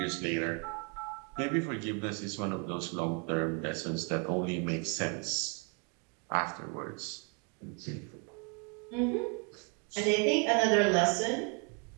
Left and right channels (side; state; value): left; quieter; 35.3 dB